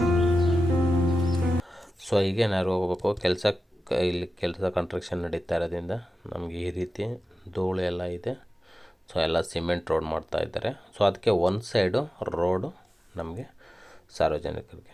ಹೀಗೆ ನಾವು ಹೋಗಬೇಕು. ಇಲ್ಲಿ ಕೆಲಸ ಕನ್ಸ್ಟ್ರಕ್ಷನ್ ನಡೀತಾ ಇರೋದ್ರಿಂದ ನಮಗೆ ಈ ರೀತಿ ಧೂಳು ಎಲ್ಲ ಇದೆ. ಎಲ್ಲ ಸಿಮೆಂಟ್ ರೋಡ್ ಮಾಡ್ತಾ ಇದ್ದಾರೆ. ಅದಕ್ಕೆ ಒಂದು ಸೈಡು ರೋಡು ನಮಗೆ ಸಾರ್ವಜನಿಕರಿಗೆ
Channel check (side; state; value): both; normal; correlation 0.93